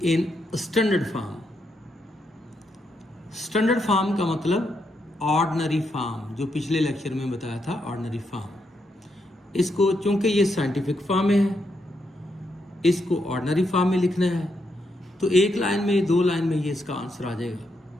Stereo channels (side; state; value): both; normal; correlation 0.80